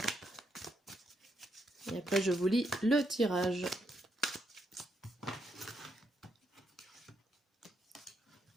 Et après, je vous lis le tirage.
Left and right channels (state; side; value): normal; both; correlation 0.79